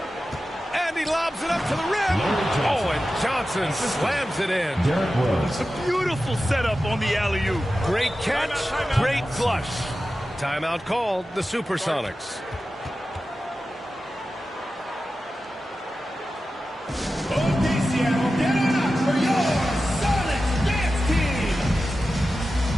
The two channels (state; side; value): normal; both; correlation 0.93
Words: And he lobs it up to the rim. Oh, and Johnson slams it in. Derrick Rose. A beautiful setup on the alley-oop. Great catch, great flush. Timeout called, the Supersonics. Okay, Seattle, get on up for your Sonics Dance Team!